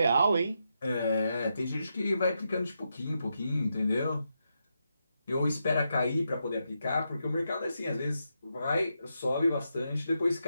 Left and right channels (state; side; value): inverted; both; correlation -0.84